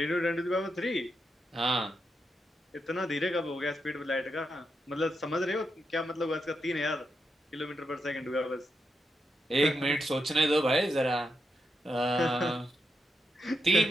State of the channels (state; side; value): normal; both; correlation 0.84